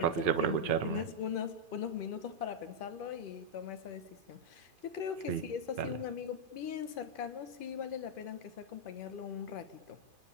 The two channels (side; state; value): left; late; 2.5 ms